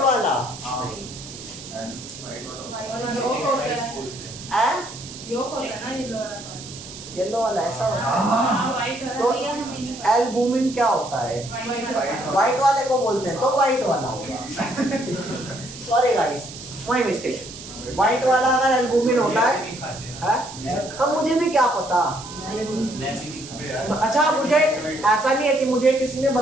नहीं। येलो वाला ऐसा होता है। तो भैया हमें नहीं पता। एल्बुमिन क्या होता है? व्हाइट वाले को बोलते हैं, तो व्हाइट वाला होगा। Sorry guys, my mistake. White वाला अगर एल्बुमिन होता है, अब मुझे भी क्या पता। अच्छा, मुझे ऐसा नहीं है कि मुझे किसी ने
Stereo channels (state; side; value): noise; right; hiss, 14 dB below the sound